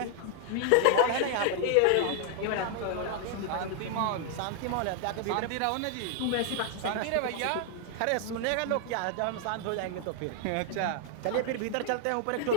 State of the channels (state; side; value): different; both; correlation 0.00